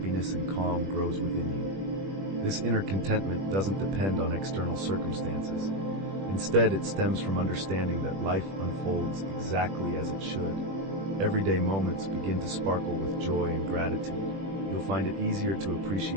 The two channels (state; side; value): late; left; 21 ms